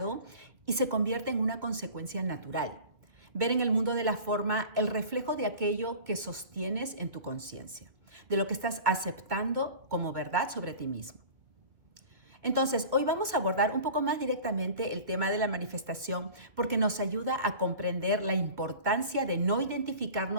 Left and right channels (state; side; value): late; left; 2.2 ms